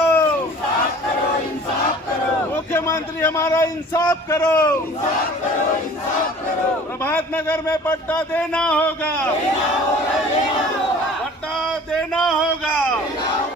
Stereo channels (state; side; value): normal; both; correlation 0.46